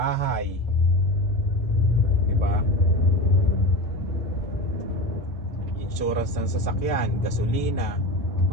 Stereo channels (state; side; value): normal; both; correlation 0.27